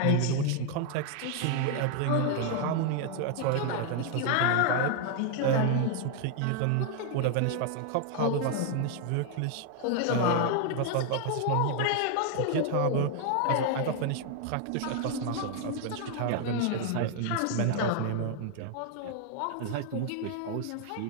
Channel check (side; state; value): both; different; correlation 0.00